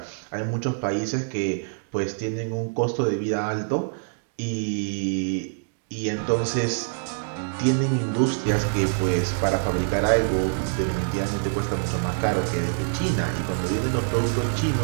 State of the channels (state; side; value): silent; left; digital silence